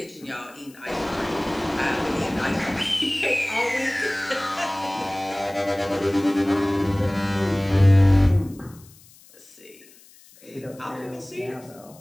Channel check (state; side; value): noise; left; hiss, 25 dB below the sound